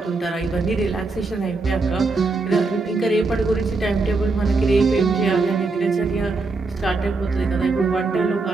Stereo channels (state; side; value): quieter; left; 3.7 dB